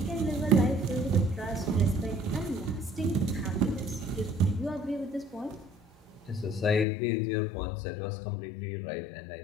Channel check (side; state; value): right; drops out; at 6.9 s